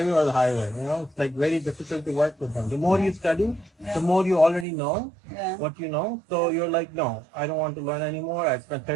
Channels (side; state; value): left; drops out; at 4.7 s